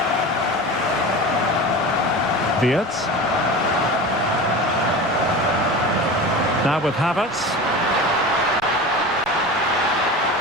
Wirtz. Now with Havertz.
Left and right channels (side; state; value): right; noise; rumble, 29 dB below the sound